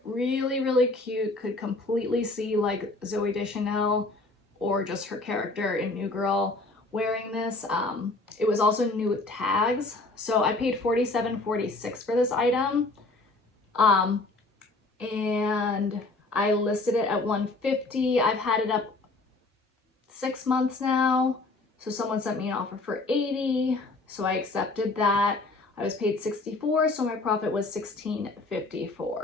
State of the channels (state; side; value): quieter; right; 3.2 dB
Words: Really, really cute. Could completely see like Zooey Deschanel or just her character in New Girl wearing this. It was also new with tags. So I paid $47.46 for this item. And I listed it at $150. I've had it up 6 months now. So someone sent me an offer for $80. So I accepted that. I was paid $64, so my profit was